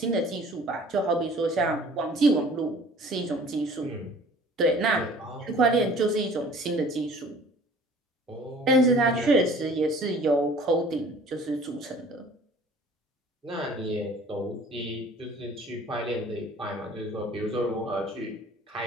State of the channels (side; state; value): both; normal; correlation 0.50